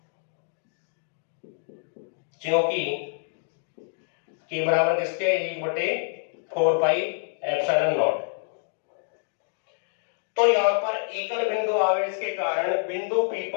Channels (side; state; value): right; silent; digital silence